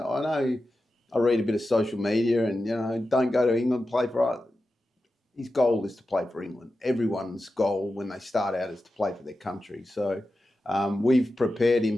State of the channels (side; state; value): both; normal; correlation 0.92